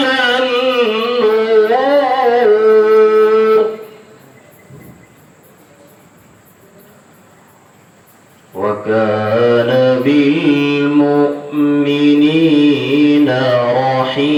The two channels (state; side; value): identical; both; correlation 1.00